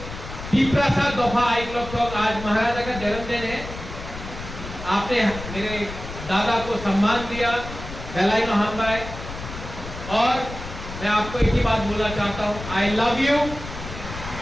तिपरासा दफा आइक्लोक। आज महाराजा का जन्मदिन है, आपने मेरे दादा को सम्मान दिया। बेलाई नो हम बाय। और मैं आपको एक ही बात बोलना चाहता हूं, आई love you,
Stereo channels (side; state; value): left; noise; rumble, 11 dB below the sound